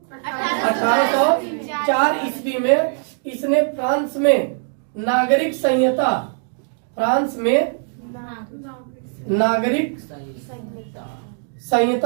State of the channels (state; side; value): silent; left; 58 dB below the other